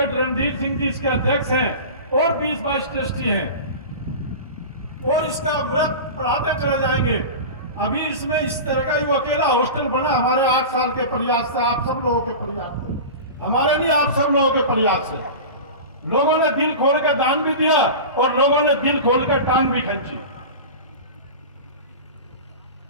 रणधीर सिंह जी इसके अध्यक्ष हैं, और 20-22 ट्रस्टी हैं, और इसका व्रत पढ़ाते चले जाएंगे। अभी इसमें इस तरह का वो अकेला हॉस्टल बना हमारे 8 साल के प्रयास से, आप सब लोगों के प्रयास से, हमारे नहीं, आप सब लोगों के प्रयास से। लोगों ने दिल खोल कर दान भी दिया, और लोगों ने दिल खोल कर टांग भी खींची,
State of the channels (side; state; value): both; inverted; correlation -0.30